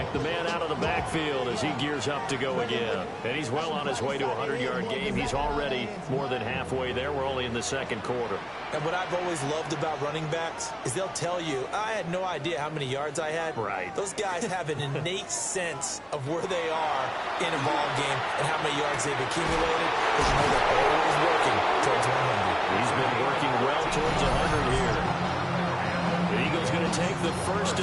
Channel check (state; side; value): identical; both; correlation 1.00